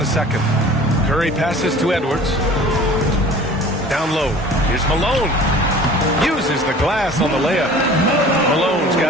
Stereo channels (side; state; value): both; normal; correlation 0.45